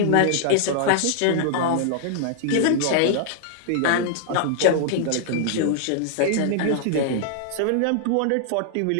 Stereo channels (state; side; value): different; both; correlation -0.01